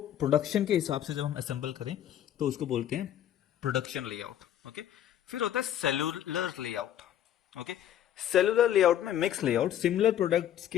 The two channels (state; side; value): quieter; right; 11.0 dB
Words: के हिसाब से जब हम असेंबल करें तो उसको बोलते हैं प्रोडक्शन लेआउट। ओके, फिर होता है cellular layout. Okay, cellular layout में मिक्स लेआउट, सिमिलर प्रोडक्ट्स